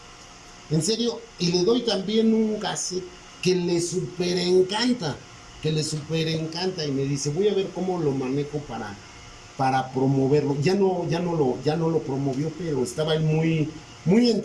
En serio, y le doy también un cassette que le súper encanta. Y me dice, voy a ver cómo lo manejo para promoverlo. Ya no lo promovió, pero estaba él muy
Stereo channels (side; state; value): both; identical; correlation 1.00